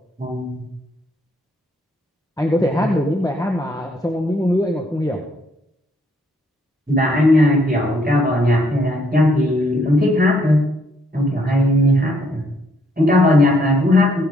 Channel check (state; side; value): normal; both; correlation 0.69